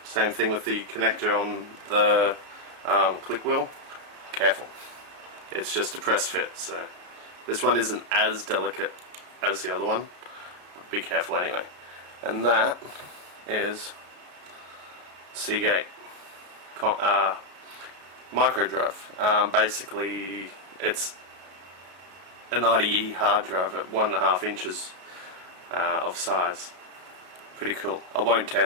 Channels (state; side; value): late; left; 33 ms